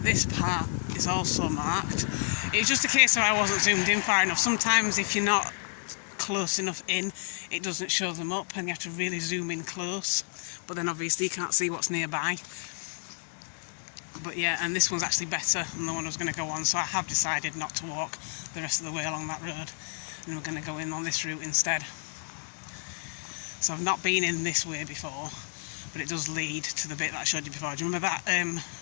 part is also marked. It's just a case of I wasn't zoomed in far enough. Sometimes if you're not close enough in, it doesn't show them up and you have to really zoom in close, but then obviously you can't see what's nearby. But yeah, and this one's actually better than the one I was going to go on, so I have decided not to walk the rest of the way along that road, and we're going to go in on this route instead. So I've not been in this way before, but it does lead to the bit that I showed you before. Do you remember that,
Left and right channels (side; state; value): right; silent; 58 dB below the other